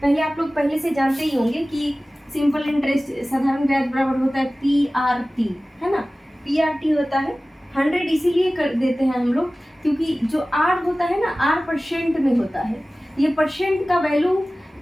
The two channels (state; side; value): normal; both; correlation 0.97